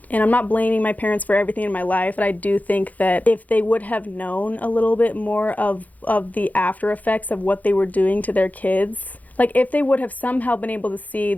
And I'm not blaming my parents for everything in my life, but I do think that if they would have known a little bit more of the after effects of what they were doing to their kids, like if they would have somehow been able to see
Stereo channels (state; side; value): late; right; 0.078 ms